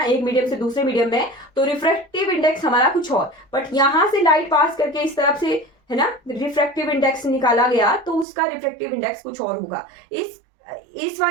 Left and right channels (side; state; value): left; drops out; at 8.2 s